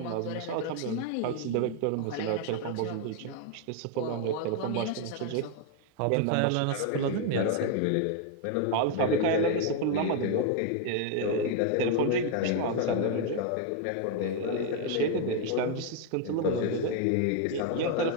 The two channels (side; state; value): both; different; correlation 0.00